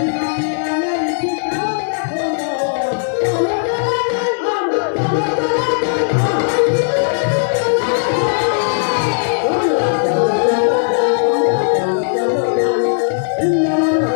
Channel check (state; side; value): silent; right; digital silence